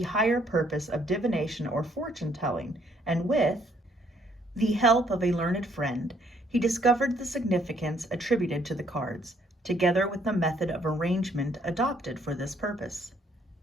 higher purpose of divination or fortune-telling, and with the help of a learned friend, he discovered the significance attributed to the cards, together with the method of arrangement adopted for this purpose.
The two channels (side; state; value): both; normal; correlation 0.67